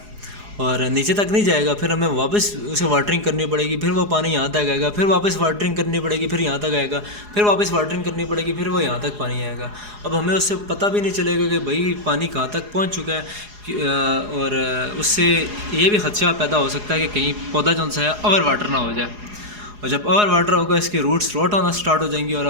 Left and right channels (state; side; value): late; left; 4.8 ms